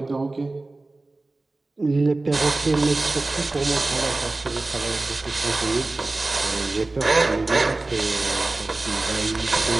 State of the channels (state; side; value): quieter; left; 3.1 dB